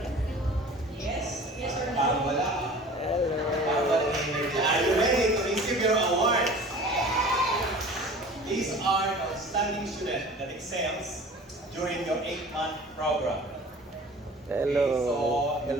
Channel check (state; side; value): normal; both; correlation 0.43